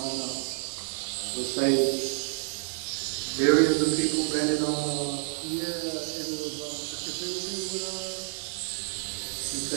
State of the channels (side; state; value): left; silent; digital silence